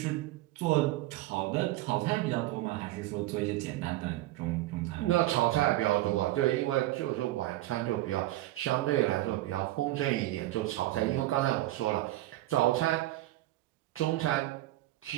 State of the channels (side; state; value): left; quieter; 16.5 dB